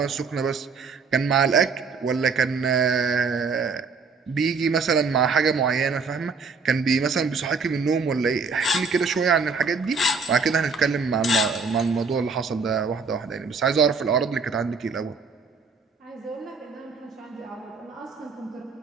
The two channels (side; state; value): left; quieter; 4.8 dB